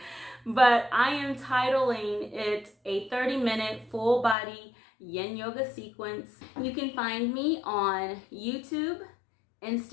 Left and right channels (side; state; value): right; drops out; at 4.4 s